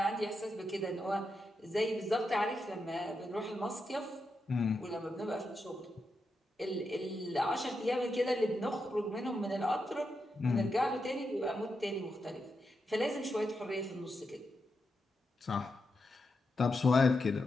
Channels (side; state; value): both; normal; correlation 0.86